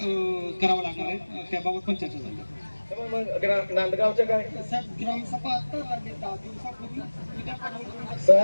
लागणार आहे, त्याबाबत पण चर्चा झाली. नांदगावचं काय ग्रामसभा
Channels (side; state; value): both; inverted; correlation -1.00